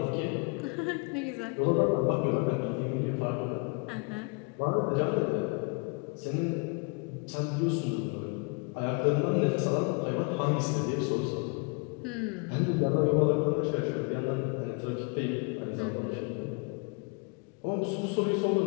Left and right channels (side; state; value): right; quieter; 34.1 dB